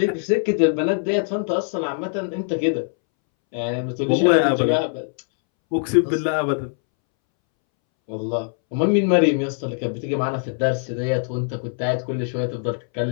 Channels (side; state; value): right; silent; 64 dB below the other